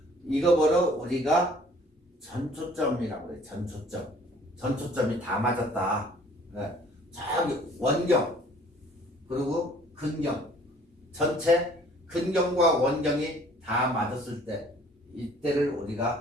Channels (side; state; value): both; normal; correlation 0.55